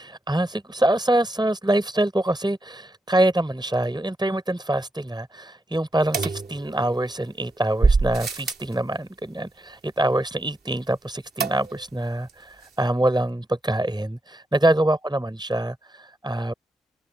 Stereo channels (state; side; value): normal; both; correlation 0.84